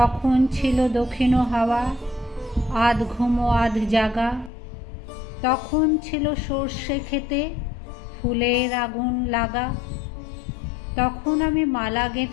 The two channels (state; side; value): drops out; right; at 4.5 s